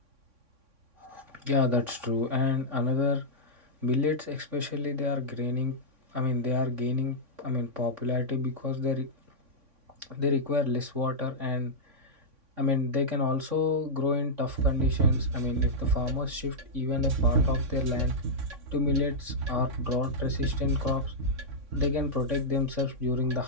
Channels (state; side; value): late; left; 3.6 ms